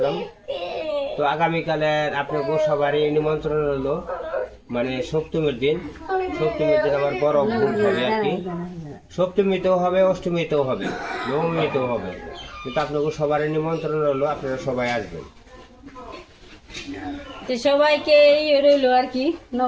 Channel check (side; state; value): both; identical; correlation 1.00